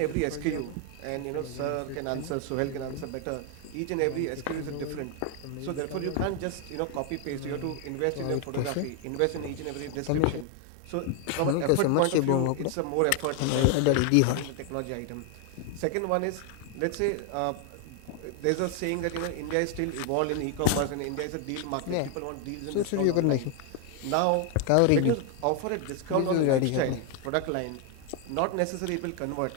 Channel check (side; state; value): both; different; correlation 0.00